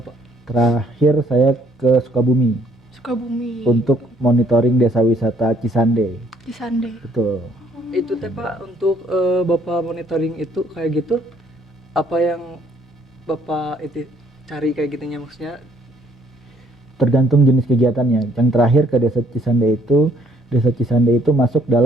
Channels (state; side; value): normal; both; correlation 0.64